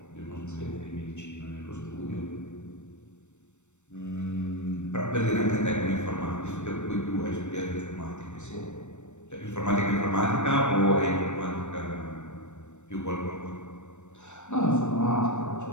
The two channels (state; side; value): late; right; 0.84 ms